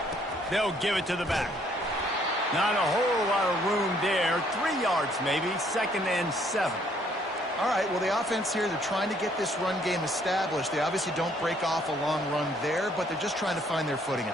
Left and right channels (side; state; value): both; normal; correlation 0.65